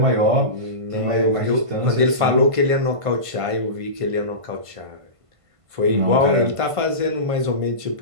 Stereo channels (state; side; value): late; left; 1.5 ms